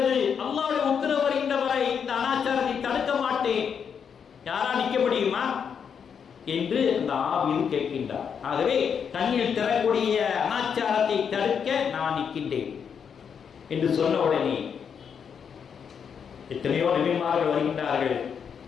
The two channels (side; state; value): right; quieter; 7.1 dB